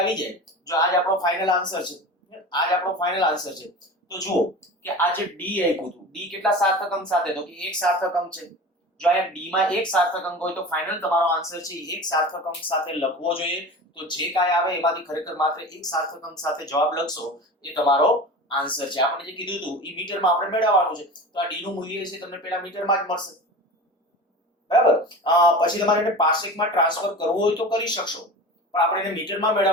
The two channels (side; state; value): both; normal; correlation 0.33